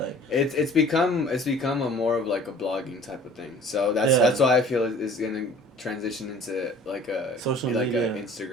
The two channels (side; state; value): both; normal; correlation 0.49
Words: it's become a more of like a blogging type of thing. So that's why I feel it's gonna transition into like a social like media. a